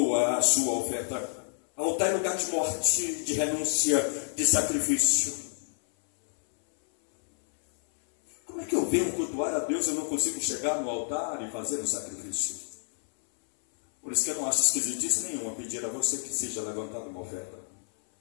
a sua oferta. Altar é lugar de morte, de renúncia, de sacrifício. Como é que eu venho cultuar a Deus e eu não consigo chegar no altar e fazer o sacrifício? Por isso que eu não acho esquisitice nenhuma pedir a você que seja levantada uma oferta.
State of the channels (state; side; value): silent; right; 59 dB below the other